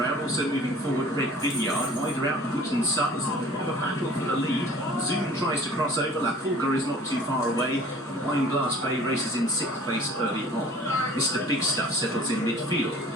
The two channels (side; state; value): both; normal; correlation 0.48